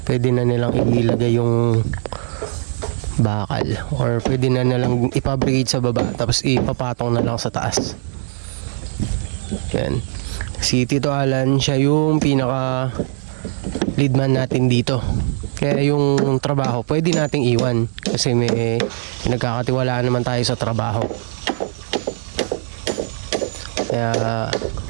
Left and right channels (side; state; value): left; silent; digital silence